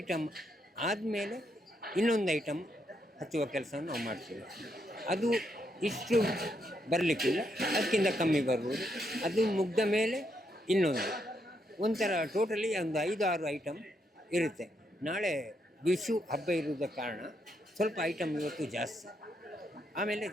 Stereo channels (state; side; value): normal; both; correlation 0.78